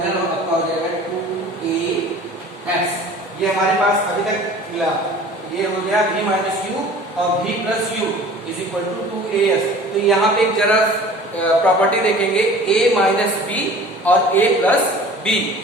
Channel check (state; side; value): normal; both; correlation 0.45